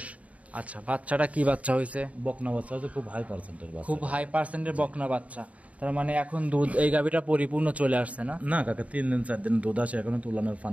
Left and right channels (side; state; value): left; late; 0.068 ms